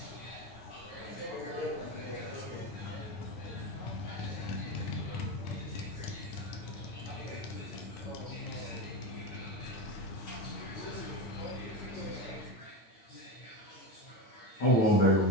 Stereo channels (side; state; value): right; late; 9.2 ms